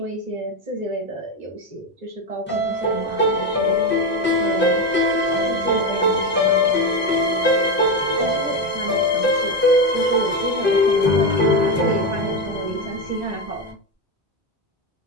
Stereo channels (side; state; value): both; normal; correlation 0.12